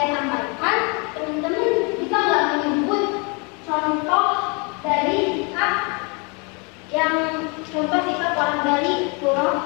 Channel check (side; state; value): right; quieter; 32.2 dB